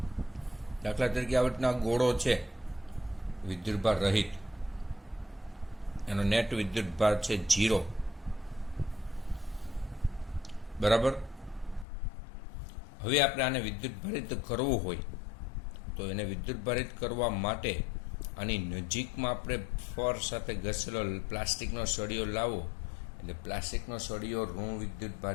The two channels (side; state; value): right; drops out; at 11.9 s